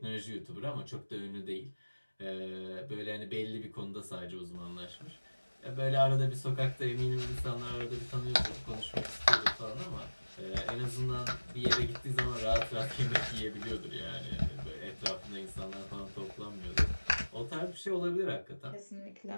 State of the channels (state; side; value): inverted; both; correlation -1.00